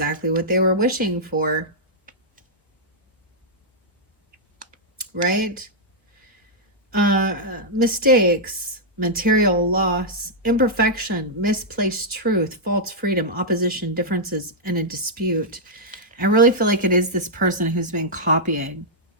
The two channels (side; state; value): both; normal; correlation -0.08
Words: what they were wishing for. Right? Mistakes, material loss, imperfection, misplaced truth, false freedom, opposition, differences, and a dispute. I really feel like it is this person who's been copying,